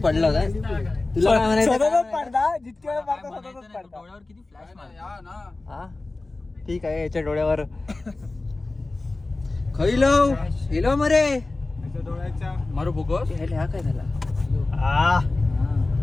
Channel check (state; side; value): quieter; right; 3.2 dB